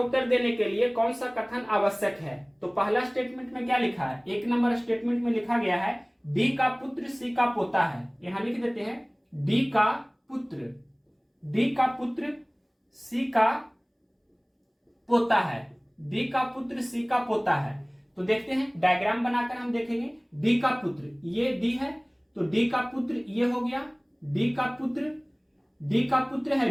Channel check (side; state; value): both; identical; correlation 1.00